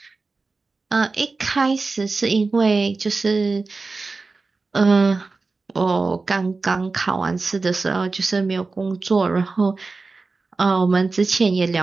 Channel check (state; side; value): quieter; left; 3.9 dB